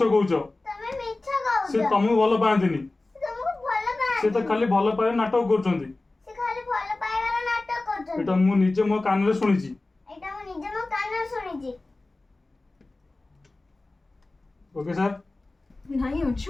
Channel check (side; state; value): right; quieter; 3.1 dB